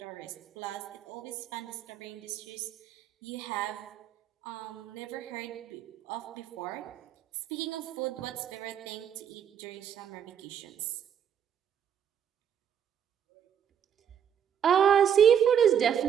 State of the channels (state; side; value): quieter; left; 8.6 dB